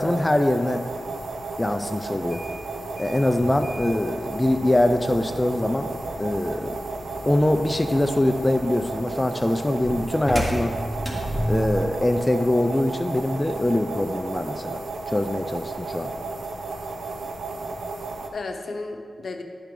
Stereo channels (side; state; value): both; normal; correlation 0.96